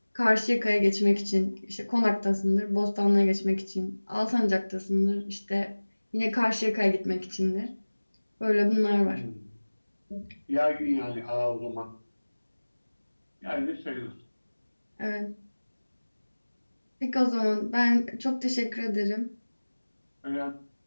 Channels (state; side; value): inverted; both; correlation -1.00